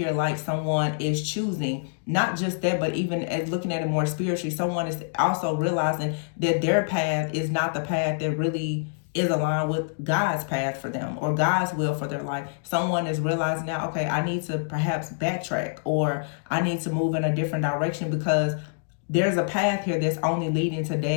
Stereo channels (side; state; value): right; silent; digital silence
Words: like someone is choosing, not just that, but even as looking at it more spiritually, someone is also realizing that their path is not the path that really is aligned with God's path for them or God's will for their life. Someone is realizing now, okay, I need to perhaps backtrack, or I need to move in a different direction because there's a path here that's only leading to